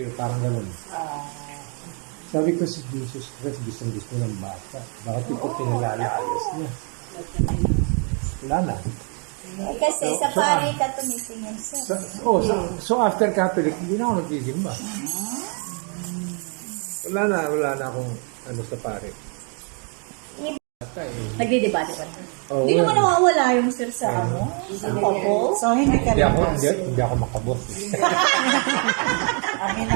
parang ganun. Sabi ko si Jesus Christ, gusto ng bata. Bakit ito pinalalayas niya? Wala na. Kasi sa pari ka tumitingin siya. So after Catholic, hindi na ako nagsisimba. Wala na akong ano sa pare. Nagdidebate pa. Oh, Hindi naman nawawala yung sir sa ano? Sa couple. So, hindi ka rin. Hindi ako makabot.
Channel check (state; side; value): quieter; left; 38.5 dB